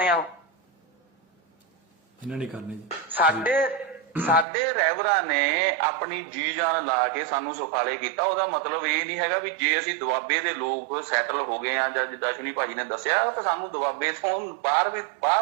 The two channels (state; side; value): drops out; left; at 4.5 s